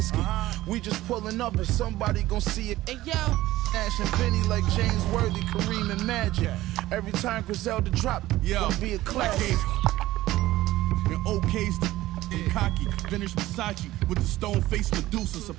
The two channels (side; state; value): left; quieter; 16.3 dB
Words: we just pulling up and somebody gon' see it. and yo, Ash and Benny like James Worthy, Kareem and Magic. Every time Griselda drop, gonna be a classic. And OK's the cocky, vintage Versace with the stone face Medusa,